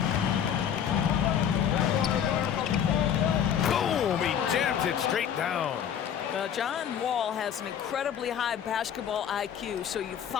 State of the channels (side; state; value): right; quieter; 8.9 dB